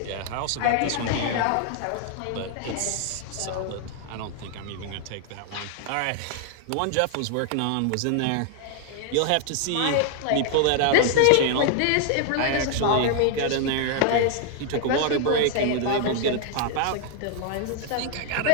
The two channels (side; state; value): both; different; correlation 0.00